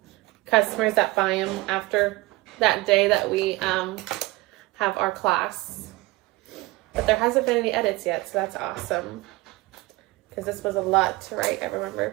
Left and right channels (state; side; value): quieter; left; 21.1 dB